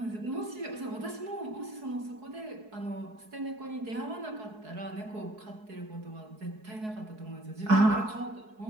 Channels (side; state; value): left; late; 4.7 ms